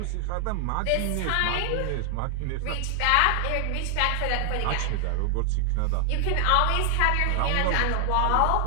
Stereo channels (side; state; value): both; different; correlation 0.00